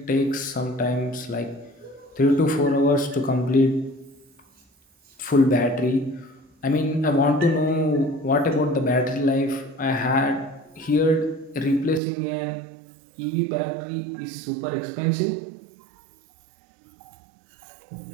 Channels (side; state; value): left; drops out; at 12.0 s